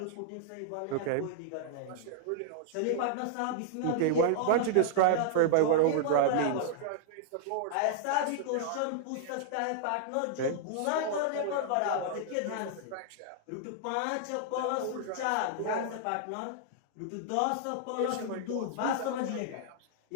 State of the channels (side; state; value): both; different; correlation -0.01